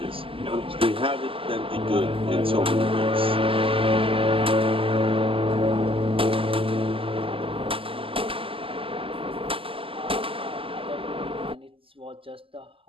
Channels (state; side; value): late; left; 0.26 ms